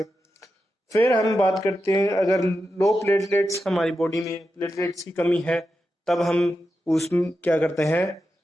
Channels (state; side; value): normal; both; correlation 0.89